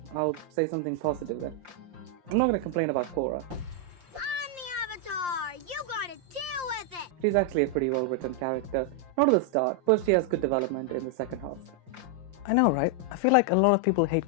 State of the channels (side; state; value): left; late; 5.7 ms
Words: say something positive then. I'm not going to complain about Korra. I'm the Avatar! You gotta deal with it! She's actually a pretty well written character. Not at the start, but she has good development in the second half. I know, right? I feel like a lot of people hate